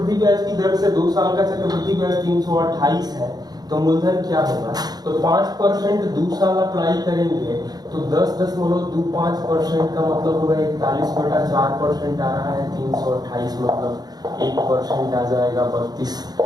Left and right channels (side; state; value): left; late; 0.19 ms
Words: ब्याज की दर से 2 साल का चक्रवृद्धि ब्याज 328 है, तो मूलधन क्या होगा। तो 5% 2 साल अप्लाई करेंगे तो 10.25% का मतलब होगा 41/4% आ रहा है 328, मतलब 1% आ जाएगा 32,